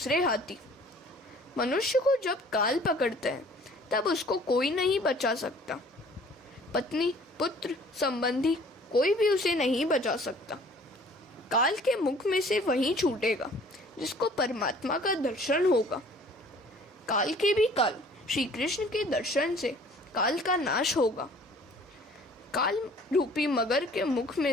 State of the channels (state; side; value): normal; both; correlation 0.52